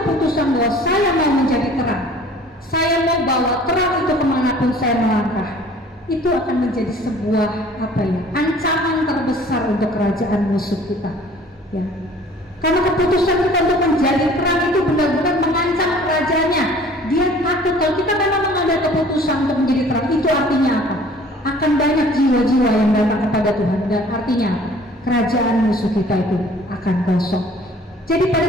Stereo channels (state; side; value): normal; both; correlation 0.51